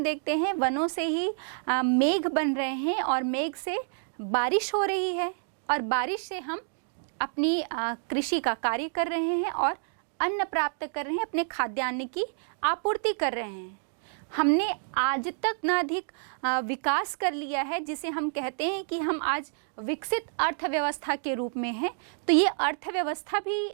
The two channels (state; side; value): silent; left; digital silence